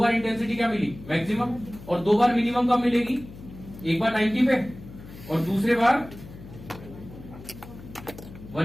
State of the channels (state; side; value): noise; left; hum, 16 dB below the sound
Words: इंटेंसिटी क्या मिली, मैक्सिमम, और 2 बार मिनिमम कब मिलेगी, एक बार 90 पे और दूसरे बार